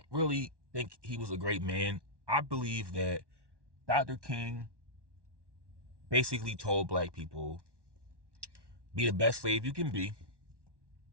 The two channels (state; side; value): late; left; 1.1 ms